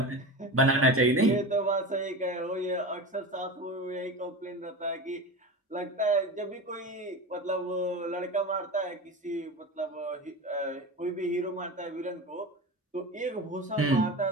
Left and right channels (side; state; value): both; normal; correlation 0.28